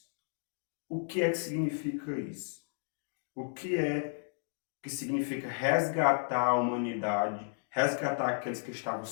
O que é que significa isso? O que é que significa resgatar a humanidade, resgatar aqueles que estavam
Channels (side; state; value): right; silent; digital silence